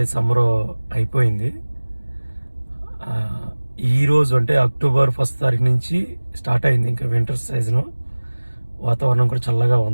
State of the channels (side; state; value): both; inverted; correlation -1.00